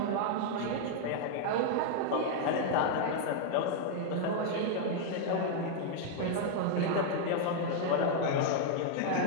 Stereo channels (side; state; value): both; different; correlation -0.01